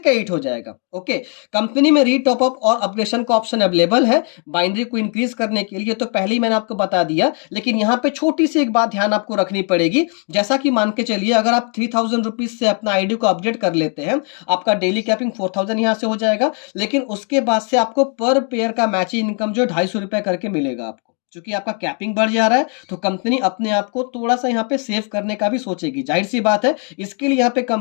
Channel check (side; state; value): right; quieter; 39.7 dB